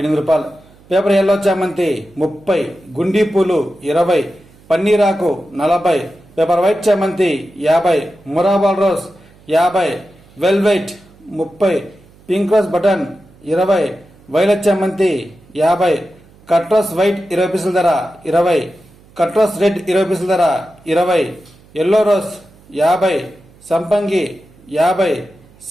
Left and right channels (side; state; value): right; noise; hum, 27 dB below the sound